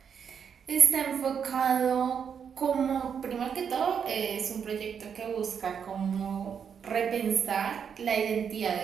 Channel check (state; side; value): quieter; left; 7.3 dB